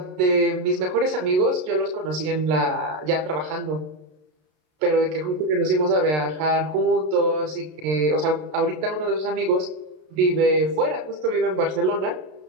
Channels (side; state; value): left; late; 33 ms